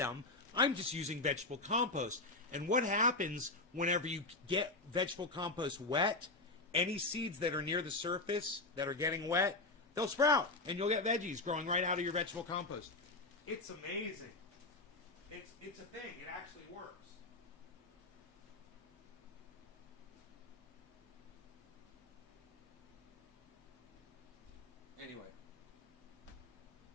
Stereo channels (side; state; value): right; quieter; 3.1 dB